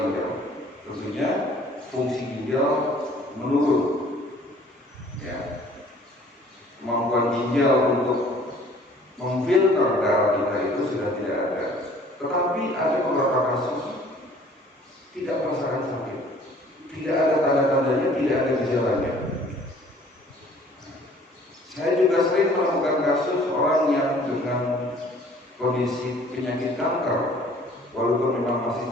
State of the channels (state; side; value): normal; both; correlation 0.54